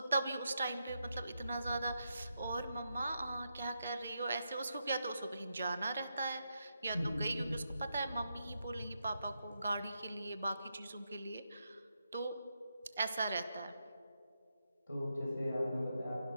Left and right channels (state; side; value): inverted; both; correlation -0.84